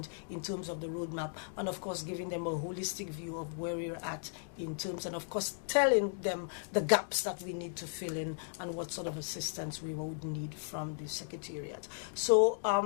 in terms of the roadmap, and of course giving them a holistic view of where we're at in terms, and of course telling them the gaps that we need to fill in and what sort of assistance we would need from the Secretariat. So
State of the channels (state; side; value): silent; right; digital silence